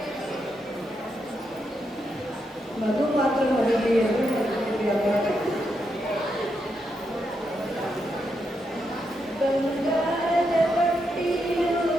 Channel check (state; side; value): normal; both; correlation 0.82